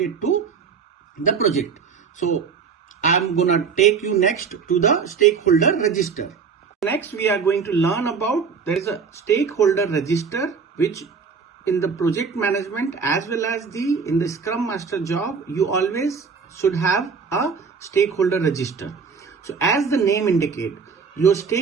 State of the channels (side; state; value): left; quieter; 5.7 dB